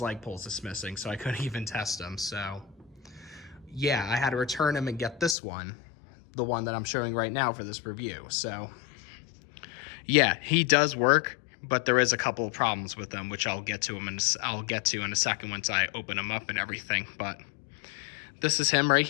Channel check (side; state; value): right; drops out; at 5.4 s